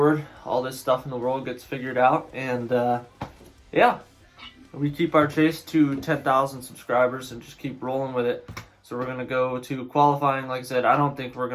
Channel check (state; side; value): identical; both; correlation 1.00